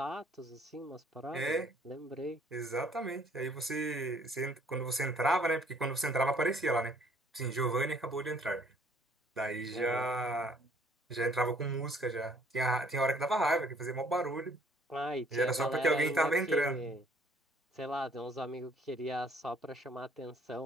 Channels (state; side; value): normal; both; correlation 0.61